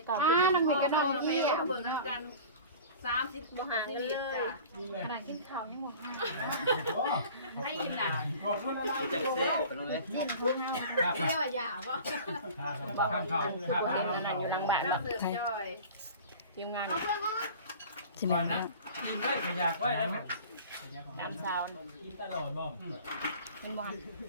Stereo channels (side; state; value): both; inverted; correlation -0.40